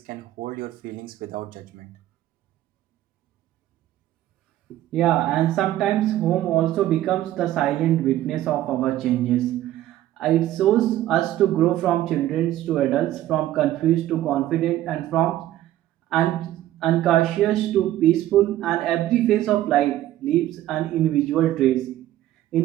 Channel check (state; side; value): quieter; left; 13.8 dB